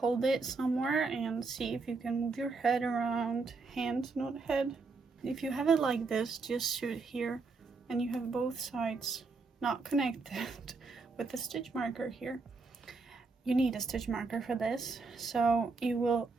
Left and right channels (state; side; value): quieter; left; 4.1 dB